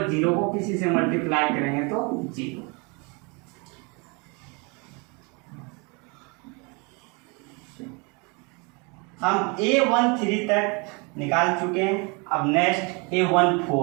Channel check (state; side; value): quieter; left; 30.9 dB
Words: 0 को किसी से मल्टीप्लाई करेंगे तो 0। हम A13 तक निकाल चुके हैं। अब नेक्स्ट